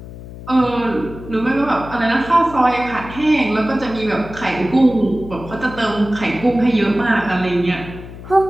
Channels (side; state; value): left; noise; hum, 14 dB below the sound